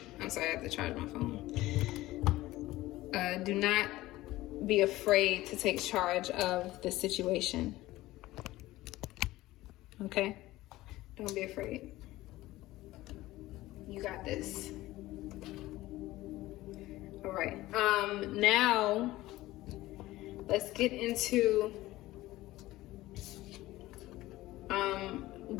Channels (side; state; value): right; quieter; 17.3 dB